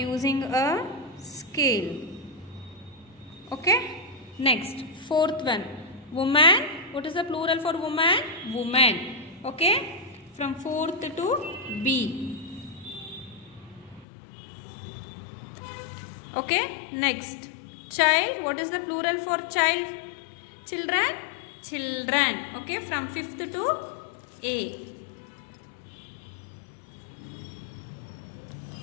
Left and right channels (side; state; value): right; drops out; at 14.1 s